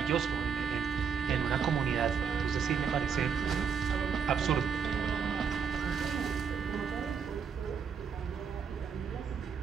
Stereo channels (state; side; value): quieter; left; 6.7 dB